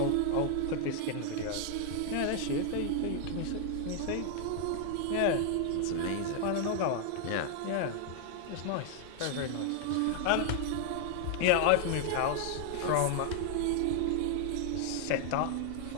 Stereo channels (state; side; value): different; both; correlation 0.00